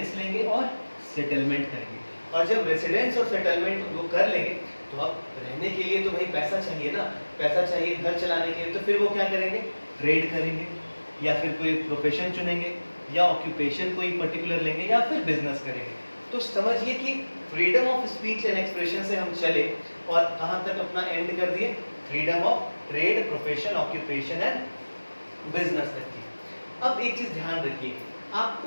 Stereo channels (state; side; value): inverted; both; correlation -1.00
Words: लेंगे और सेटलमेंट करेंगे। और जब रेसिडेंस और सेटलमेंट वो कर लेंगे तो अब रहने के लिए तो भाई पैसा चाहिए ना, पैसा चाहिए घर चलाने के लिए, तो फिर वो क्या करेंगे, ट्रेड करेंगे या फिर कोई प्रोफेशन चुनेंगे या ऑक्यूपेशन कोई पर्टिकुलर लेंगे या फिर बिजनेस करेंगे। तो समझिए कि freedom of speech and expression से हम चले और कहाँ तक अपना एंड कर दिए, freedom of trade, profession, occupation and business तक की। अब एक चीज ध्यान रखिए,